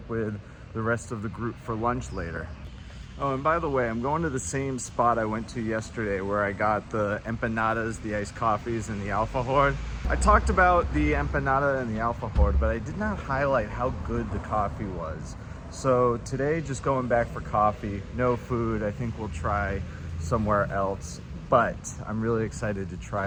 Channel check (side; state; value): both; identical; correlation 1.00